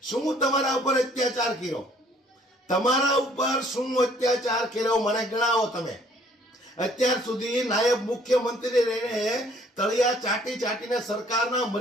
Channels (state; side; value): normal; both; correlation 0.60